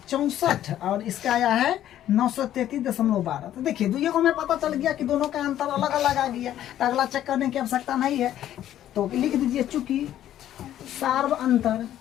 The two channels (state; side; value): quieter; right; 11.9 dB